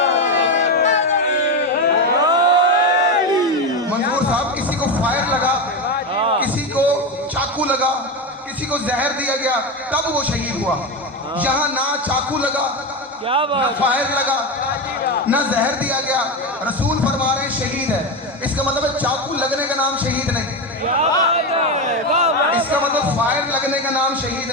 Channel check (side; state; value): both; normal; correlation 0.15